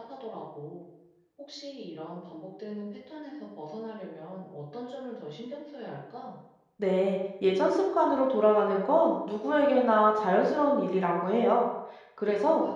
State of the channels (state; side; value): identical; both; correlation 1.00